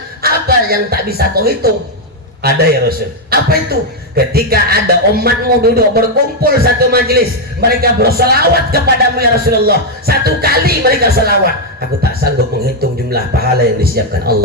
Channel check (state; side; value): normal; both; correlation 0.00